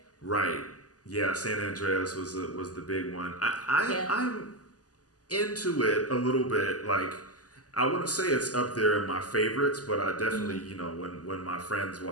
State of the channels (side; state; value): right; late; 0.67 ms